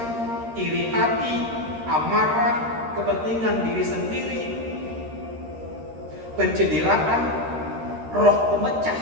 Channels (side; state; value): left; late; 13 ms